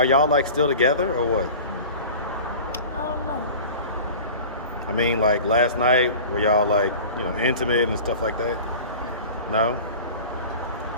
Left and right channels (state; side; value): inverted; both; correlation -0.38